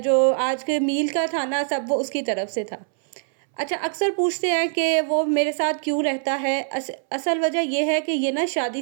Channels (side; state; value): left; silent; 63 dB below the other